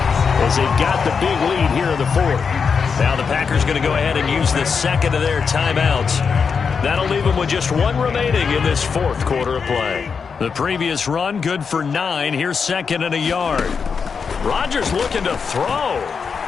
as they've got the big lead here in the 4th. Now the Packers going to go ahead and use the 2nd of their timeouts. That'll leave them with just 1 remaining in this 4th quarter of play. The previous run good for 9. Here's 2nd and a yard. Rodgers looking to throw.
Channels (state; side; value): quieter; right; 5.8 dB